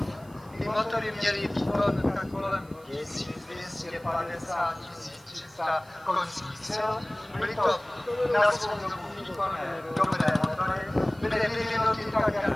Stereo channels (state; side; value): noise; right; hiss, 27 dB below the sound